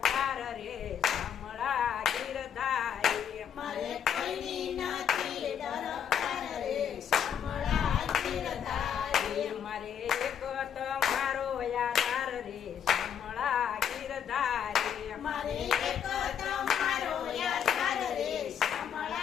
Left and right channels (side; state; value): right; quieter; 8.5 dB